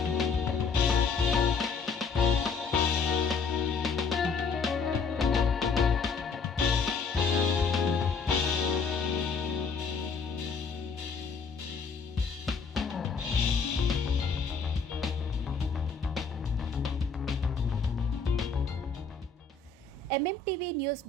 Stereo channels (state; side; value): quieter; right; 5.0 dB